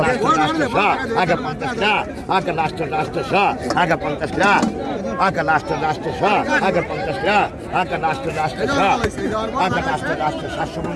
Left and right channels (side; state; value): both; identical; correlation 1.00